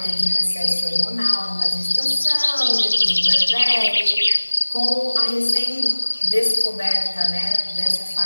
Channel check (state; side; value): inverted; both; correlation -1.00